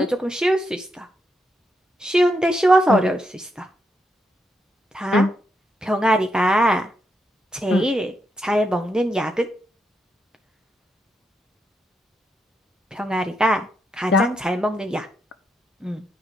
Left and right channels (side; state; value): both; normal; correlation 0.81